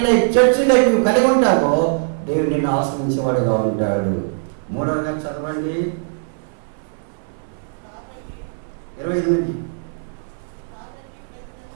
life, church life నువ్వు కలిగి ఉంటావో దేవుడు నిన్ను ఆశ్రయించేవాడుగా ఉంటాడు. 3వగా చదవండి 28.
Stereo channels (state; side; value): silent; left; 65 dB below the other